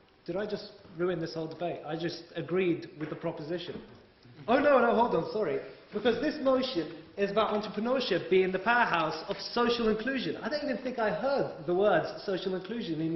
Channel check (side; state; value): both; identical; correlation 1.00